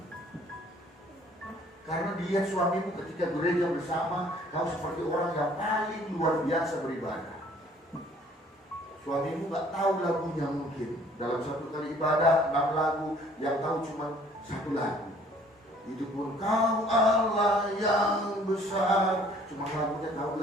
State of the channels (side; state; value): both; normal; correlation 0.57